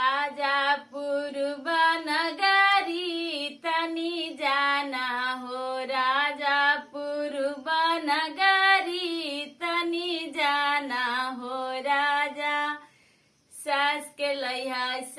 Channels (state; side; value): identical; both; correlation 1.00